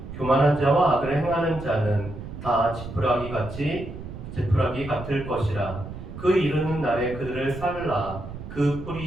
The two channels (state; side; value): noise; right; rumble, 11 dB below the sound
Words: 교만한 자와 악을 행하는 자는 다 지푸라기 같을 것이라. 그 이르는 날에 그들을 살라. 그